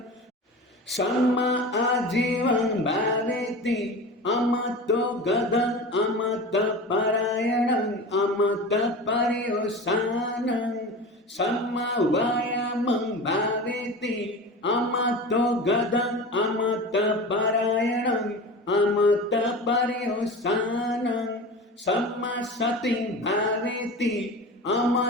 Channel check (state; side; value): normal; both; correlation 0.32